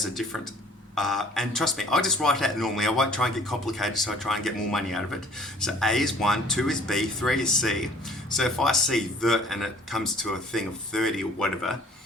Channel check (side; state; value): both; normal; correlation 0.53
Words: a different, and trust me, I just write out normally. I won't try and get complicated, so I try and get more money out of it. So A is 1, 2 is B, 3 is C. So if I see the and it comes to a thing of 30 or whatever,